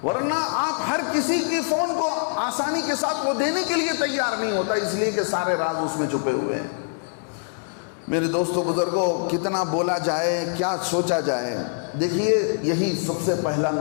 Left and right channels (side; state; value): right; silent; digital silence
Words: ورنہ آپ ہر کسی کی فون کو آسانی کے ساتھ وہ دینے کے لیے تیار نہیں ہوتا, اس لیے کہ سارے راز اس میں چھپے ہوئے ہیں. میرے دوستو بزرگوں, کتنا بولا جائے, کیا سوچا جائے. دیکھیے یہی سب سے پہلا